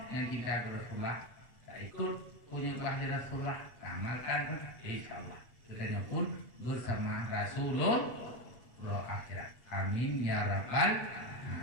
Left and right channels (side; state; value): right; late; 8.0 ms